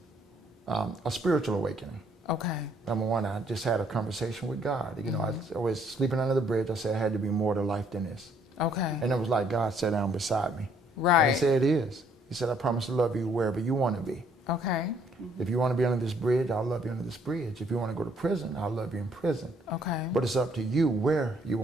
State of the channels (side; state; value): both; normal; correlation 0.65